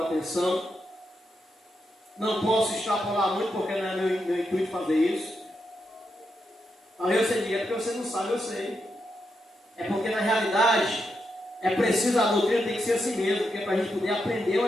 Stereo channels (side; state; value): both; normal; correlation 0.84